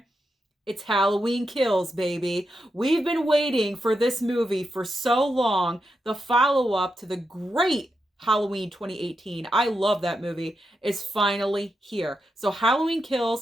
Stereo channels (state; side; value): normal; both; correlation 0.86